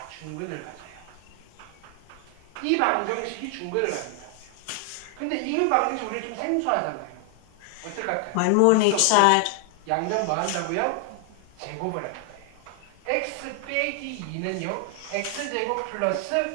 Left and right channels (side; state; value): both; different; correlation 0.00